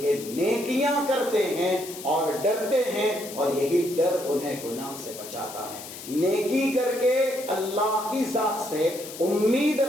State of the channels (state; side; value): noise; left; hiss, 13 dB below the sound